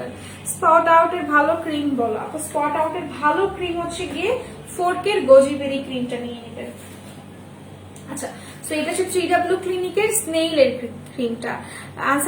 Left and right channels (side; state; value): both; identical; correlation 1.00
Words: স্পট আউটের ভালো ক্রিম বলো আপু? স্পট আউটের ভালো ক্রিম হচ্ছে গিয়ে 4K এর গোজিবেরি ক্রিমটা নিয়ে নেবেন। আচ্ছা, তো এটা হচ্ছে 3W ক্লিনিকের স্নেইলের ক্রিমটা।